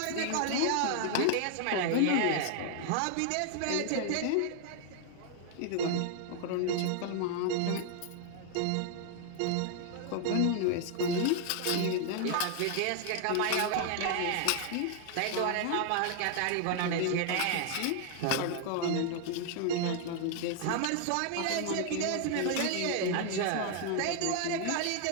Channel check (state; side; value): different; both; correlation 0.00